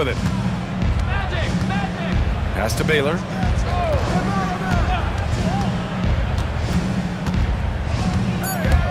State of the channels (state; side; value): identical; both; correlation 1.00